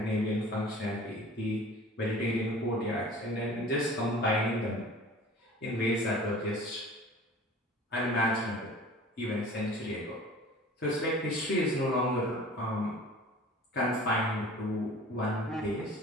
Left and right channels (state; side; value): normal; both; correlation 0.44